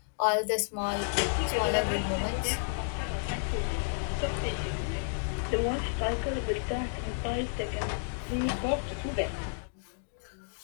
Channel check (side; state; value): right; silent; digital silence